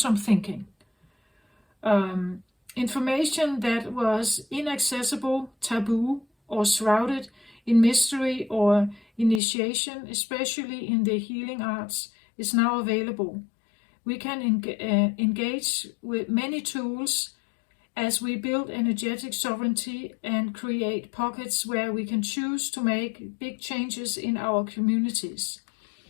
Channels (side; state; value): right; drops out; at 9.4 s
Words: thinking. Information that was inaccessible, taboo, or shrouded in mystery or initiation, especially in the healing arts, is now available. We can engage with many tools as we build energetic sovereignty and create pockets where we can choose to make big changes in our communities.